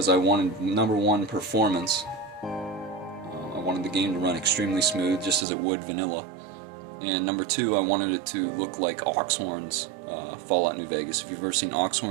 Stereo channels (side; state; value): left; drops out; at 5.5 s